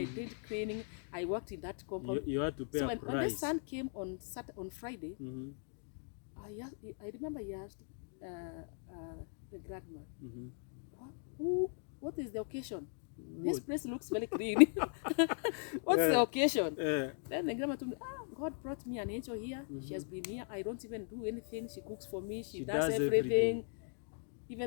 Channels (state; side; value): silent; right; 52 dB below the other